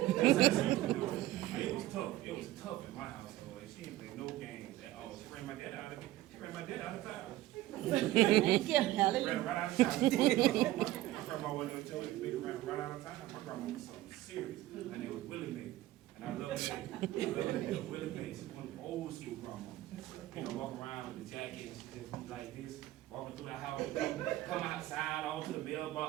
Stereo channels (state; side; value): quieter; left; 15.6 dB